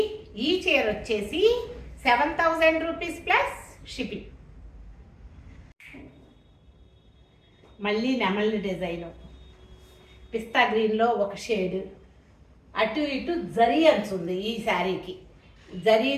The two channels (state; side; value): identical; both; correlation 1.00